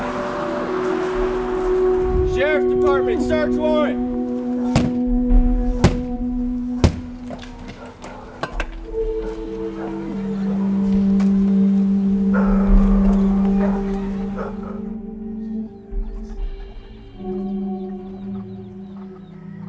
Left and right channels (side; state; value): both; identical; correlation 1.00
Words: Sheriff's Department, search warrant!